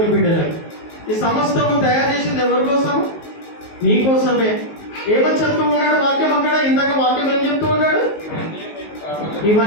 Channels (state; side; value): late; right; 19 ms